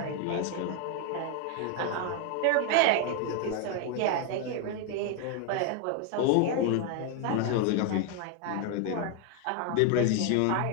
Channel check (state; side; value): different; both; correlation 0.01